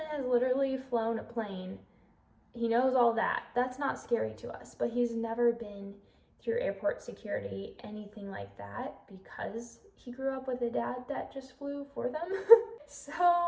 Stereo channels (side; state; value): both; identical; correlation 1.00